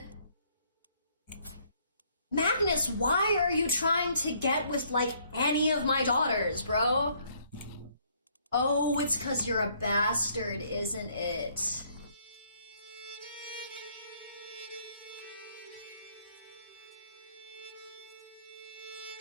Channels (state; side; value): inverted; both; correlation -0.65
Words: Magnus, why are you trying to get with, like, any of my daughters, bro? Oh, it's 'cause you're a bastard, isn't it?